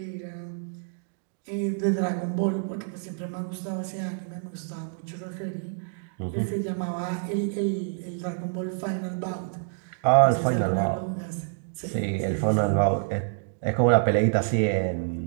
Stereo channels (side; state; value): left; silent; digital silence